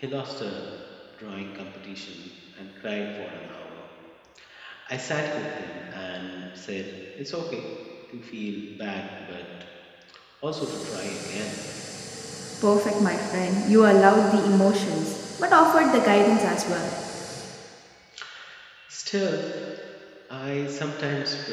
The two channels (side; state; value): both; identical; correlation 1.00